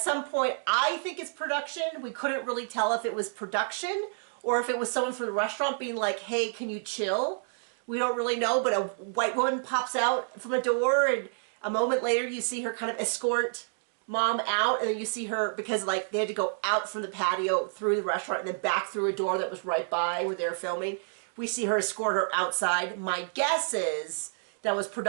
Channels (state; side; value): silent; left; digital silence